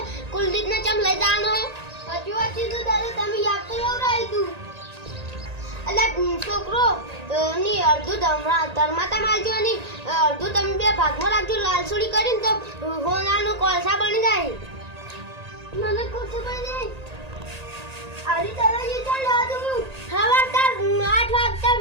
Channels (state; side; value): late; left; 1.8 ms